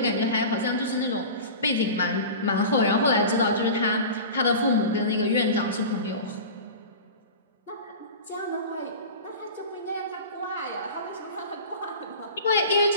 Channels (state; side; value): inverted; both; correlation -0.33